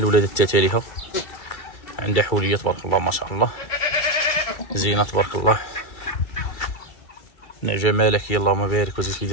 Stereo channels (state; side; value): late; right; 2.3 ms